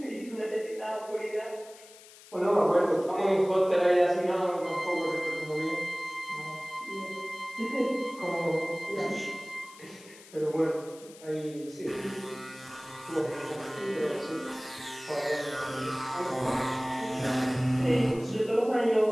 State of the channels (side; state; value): left; noise; hiss, 21 dB below the sound